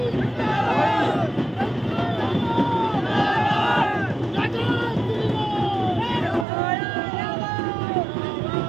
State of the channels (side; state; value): left; drops out; at 6.5 s